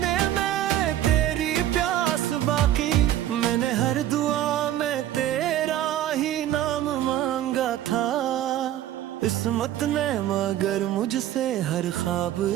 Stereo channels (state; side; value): quieter; left; 12.4 dB